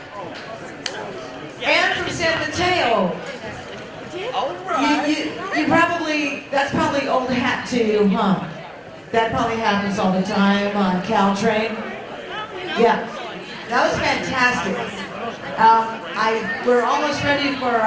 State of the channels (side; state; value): both; identical; correlation 1.00